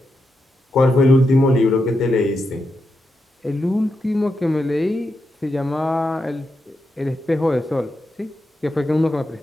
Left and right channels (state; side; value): normal; both; correlation 0.85